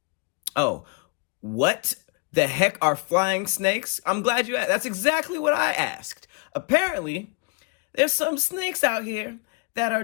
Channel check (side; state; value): right; quieter; 30.8 dB